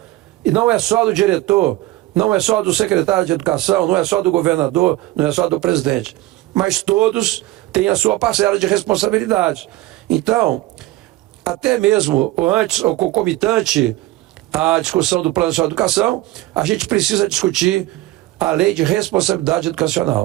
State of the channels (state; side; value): quieter; left; 17.3 dB